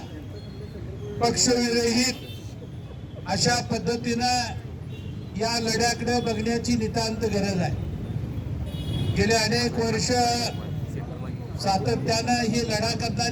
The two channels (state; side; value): identical; both; correlation 1.00